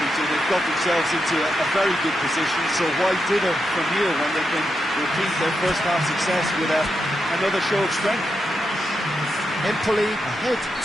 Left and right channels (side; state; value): both; normal; correlation 0.85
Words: Peter. They've got themselves into a very good position, so why dither from here when they can repeat their first half success with another show of strength? Empoli ahead